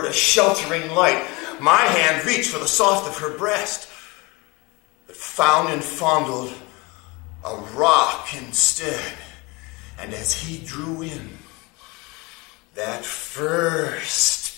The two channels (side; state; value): right; quieter; 25.7 dB